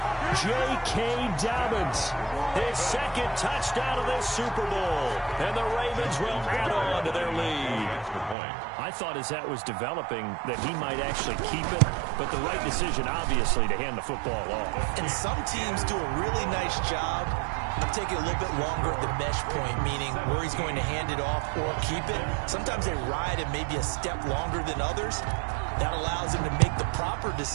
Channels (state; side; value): drops out; left; at 8.3 s